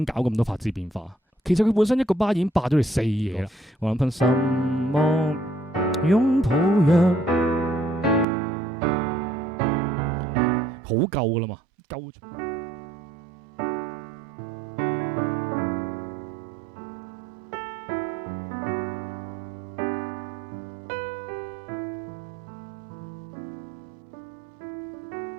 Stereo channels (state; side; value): drops out; left; at 8.2 s